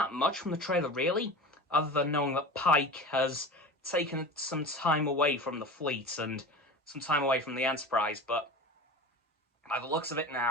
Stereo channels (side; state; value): both; normal; correlation 0.33